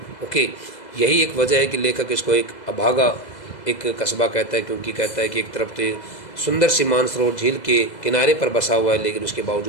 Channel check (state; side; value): late; right; 2.0 ms